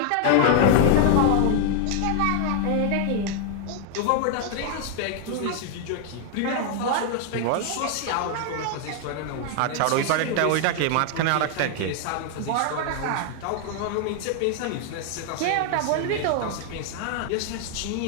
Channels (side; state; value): both; different; correlation 0.00